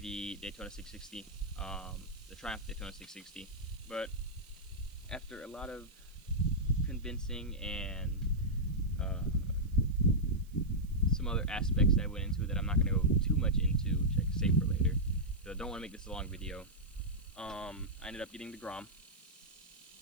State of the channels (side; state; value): right; noise; hiss, 28 dB below the sound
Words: Daytona 660, the Triumph Daytona 660, but after a lot of convincing and some other aspects that I went into that I'm not going to go too much into, which I can save for later, because I don't want to make this a long video. I ended up getting the Grom.